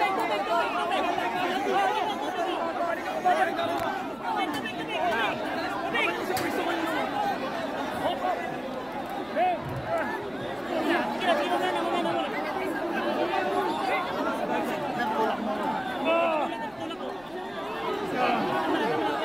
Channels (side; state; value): left; noise; rumble, 27 dB below the sound